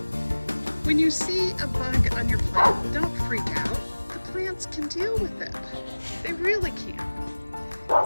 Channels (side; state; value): both; inverted; correlation -1.00